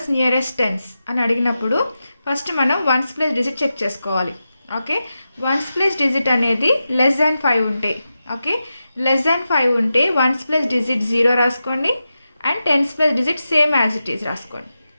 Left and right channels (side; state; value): both; inverted; correlation -0.91